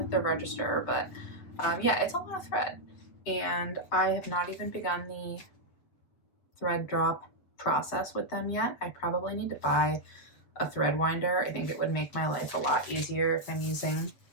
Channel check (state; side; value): late; right; 7.8 ms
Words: the register, but yeah, it's a lot of thread, and I have not even begun the thread drop process with them yet. I probably need to buy a thread winder. I think it would make my life a lot easier if I'm using